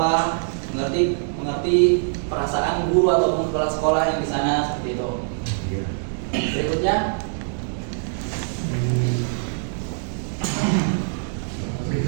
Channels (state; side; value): silent; left; digital silence